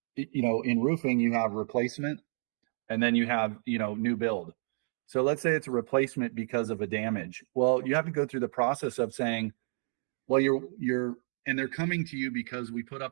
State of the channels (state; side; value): silent; left; 56 dB below the other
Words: in roofing, you have replacement and then you have, new build. So let's say it's a replacement because of a damage. Well, you have to go through the process of saying, well, and they're coming to you because we put